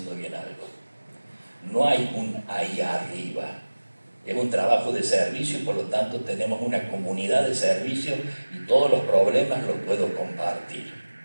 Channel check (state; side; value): inverted; both; correlation -1.00